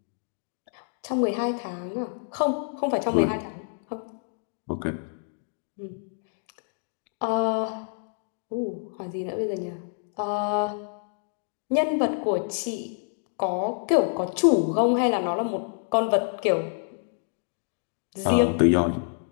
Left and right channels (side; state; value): right; silent; digital silence